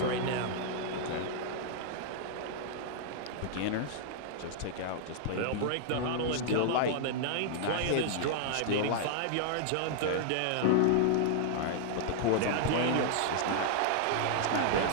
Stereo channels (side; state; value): both; different; correlation -0.01